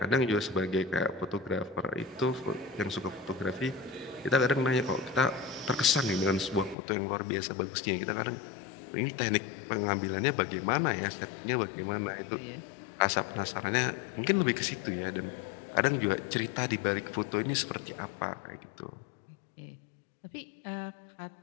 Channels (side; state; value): right; drops out; at 6.8 s